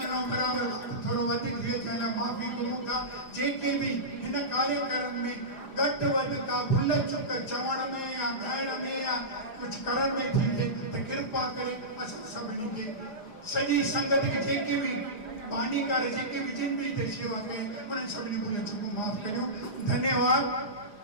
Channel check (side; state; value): right; late; 4.9 ms